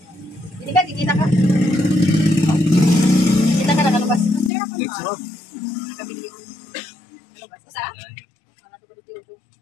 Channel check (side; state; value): right; drops out; at 4.5 s